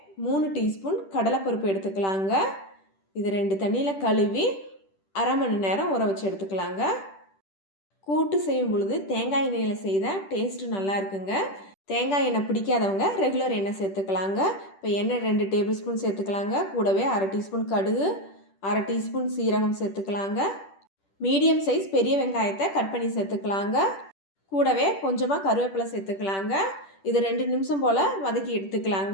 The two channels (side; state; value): right; late; 10 ms